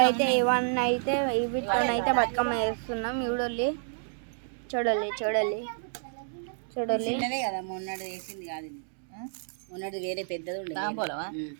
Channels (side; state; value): left; silent; digital silence